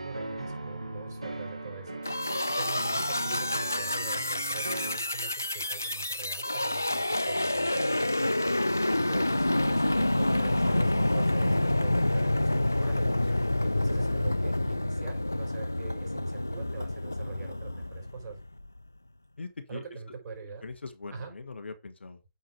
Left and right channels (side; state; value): both; inverted; correlation -0.93